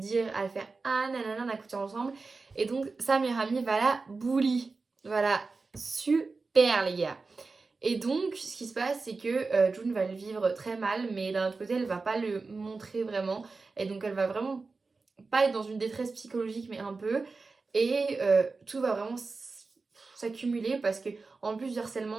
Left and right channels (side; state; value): left; quieter; 4.1 dB